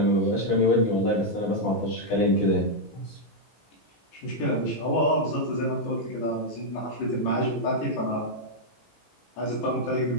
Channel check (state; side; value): late; right; 18 ms